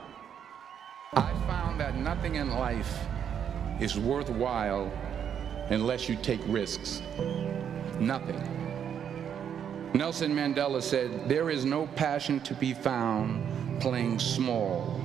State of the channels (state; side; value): quieter; left; 8.5 dB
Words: I found that nothing in life is worthwhile unless you take risks. Nothing. Nelson Mandela said, "There is no passion to be found playing small